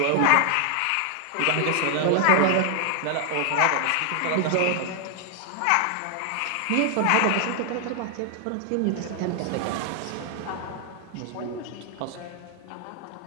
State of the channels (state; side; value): different; both; correlation 0.00